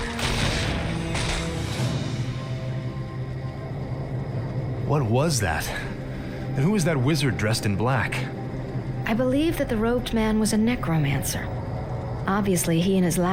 What was that? And who was that wizard dressed in black? I believe that the robed man was a necromancer. Obviously, he and his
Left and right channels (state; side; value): identical; both; correlation 1.00